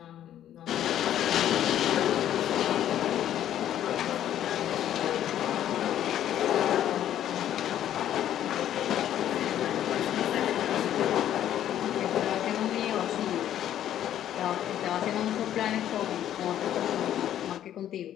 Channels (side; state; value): right; quieter; 11.3 dB